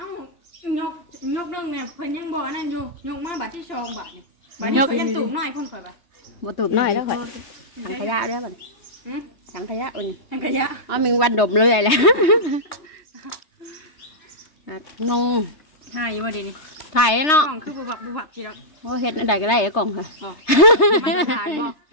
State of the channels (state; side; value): late; right; 3.3 ms